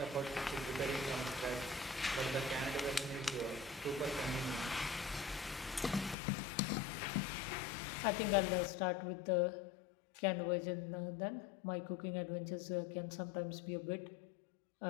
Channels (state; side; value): drops out; right; at 6.2 s